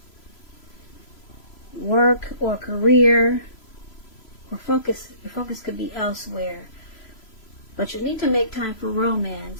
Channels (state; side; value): late; right; 3.0 ms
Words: Work or career, or your focus could be elsewhere. But you need to make time for